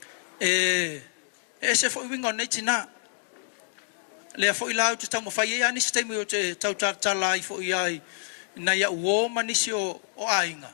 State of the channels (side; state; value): right; silent; digital silence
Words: e se foi wingo nei tina le foi la tu tamo fai ia ni sistemi o te tautala i foi ai na ia uo manisi o ainga